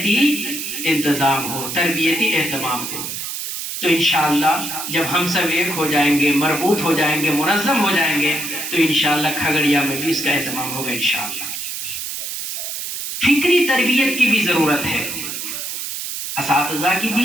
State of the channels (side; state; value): right; noise; hiss, 5 dB below the sound